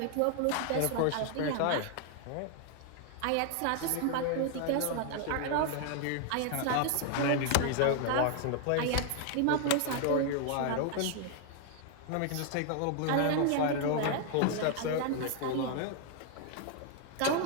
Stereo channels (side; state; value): both; different; correlation 0.00